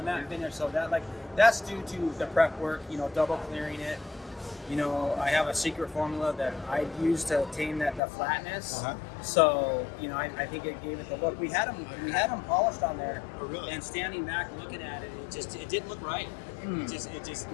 matte finish. So that's due to the prep work. Double clearing it. you know, I have a secret formula that I use to attain the flatness. Uh-huh. So, you know, I think it gave it the look. We had them polished on there, Oh, really? and standing back looking at it, it didn't look right. It just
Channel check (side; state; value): right; drops out; at 8.0 s